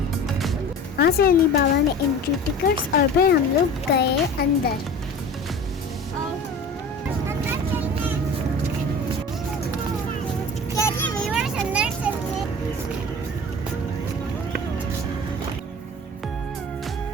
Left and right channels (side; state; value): both; normal; correlation 0.38